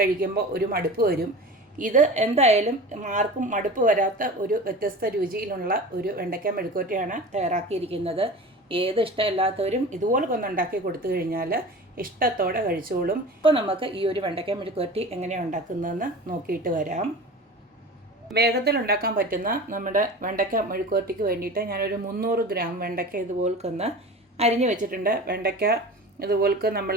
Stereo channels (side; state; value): both; normal; correlation 0.35